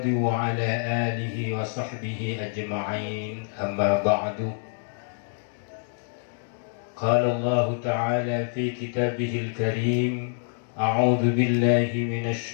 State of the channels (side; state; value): right; silent; digital silence